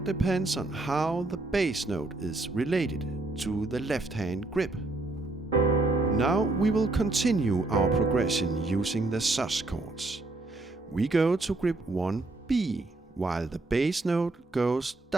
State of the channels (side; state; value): left; quieter; 3.1 dB